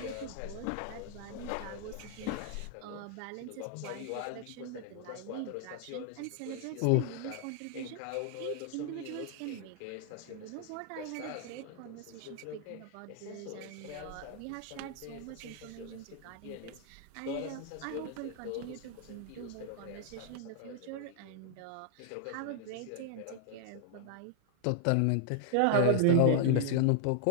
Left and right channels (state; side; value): different; both; correlation 0.00